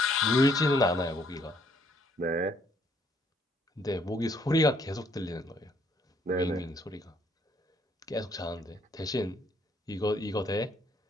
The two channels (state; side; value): normal; both; correlation 0.67